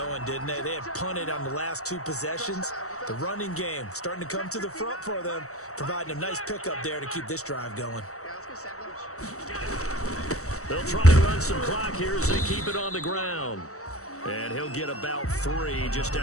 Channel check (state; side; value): late; right; 0.65 ms